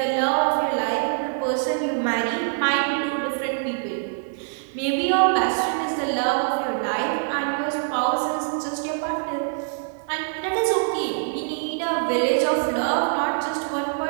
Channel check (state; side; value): silent; left; 57 dB below the other